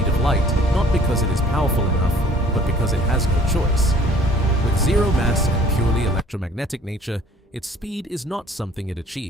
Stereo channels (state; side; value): normal; both; correlation 0.54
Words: of light not because it is powerful enough, but because it has no choice. With zero mass and purely electromagnetic nature, its speed is not something it